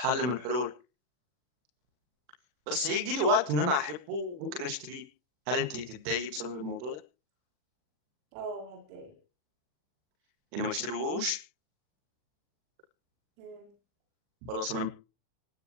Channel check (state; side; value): late; left; 40 ms